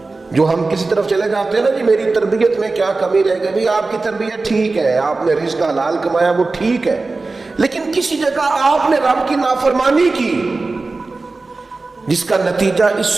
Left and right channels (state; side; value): quieter; left; 3.6 dB